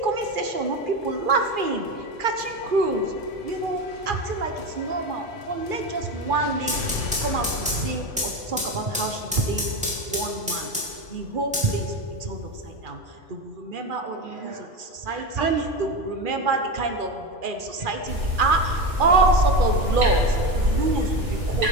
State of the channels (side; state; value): both; normal; correlation 0.19